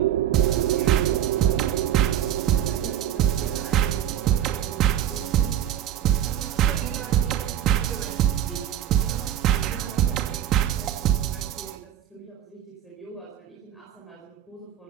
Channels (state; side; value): quieter; left; 10.9 dB